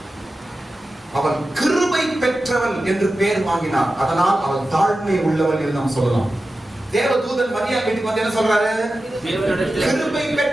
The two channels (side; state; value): both; normal; correlation 0.93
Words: அவள் கிருபை பெற்றவள் என்று பெயர் வாங்கினார், அதனால் அவள் தாழ்மை உள்ளவள் என்று நாம் சொல்லலாம். தேவதூதன் மரியாள் வீட்டுக்கு வந்து என்ன சொல்றாரு? கிருபை